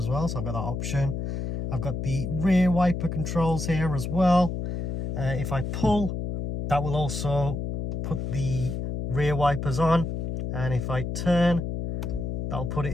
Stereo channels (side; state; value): left; noise; hum, 3 dB below the sound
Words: well. So I've got that option. I've got the rear wiper controls here as well. If I pull, that will also put the rear wipers on, and if I turn, that'll